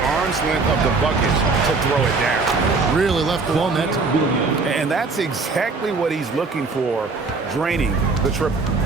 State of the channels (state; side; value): quieter; left; 4.1 dB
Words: length of the bucket to throw it down. Really left alone that time. And that's exactly what he's looking for, draining the triple.